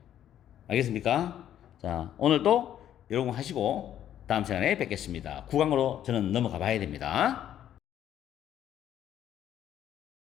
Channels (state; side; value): quieter; right; 10.9 dB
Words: 알겠습니까? 자, 오늘도 여러분 하시고 다음 시간에 뵙겠습니다. 9강으로 저는 넘어가 봐야 됩니다.